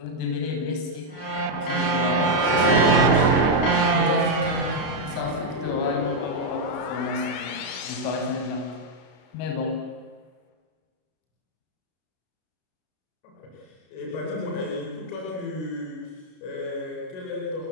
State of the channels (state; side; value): late; right; 32 ms